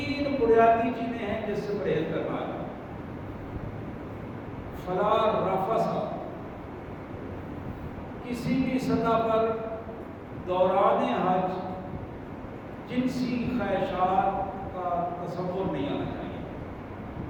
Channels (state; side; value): identical; both; correlation 1.00